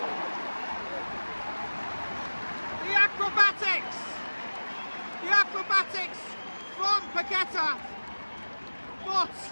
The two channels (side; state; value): both; inverted; correlation -1.00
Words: The acrobatics! The acrobatics from Paqueta. But